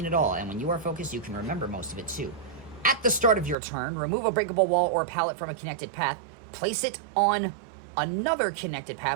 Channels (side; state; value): left; drops out; at 3.6 s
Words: it all, and when you are focused, you can remember most of it too. At the start of your turn, remove a breakable wall or pallet from a connected path, place it on another connected